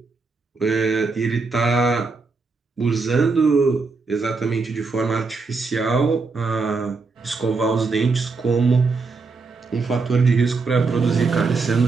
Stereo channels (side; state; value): left; quieter; 4.2 dB